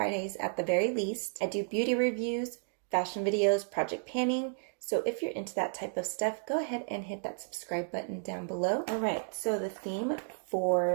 at the very least. I do beauty reviews, fashion videos, project panning. So if you're into that type of stuff, go ahead and hit that subscribe button down below. Alright, so the theme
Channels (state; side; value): silent; left; digital silence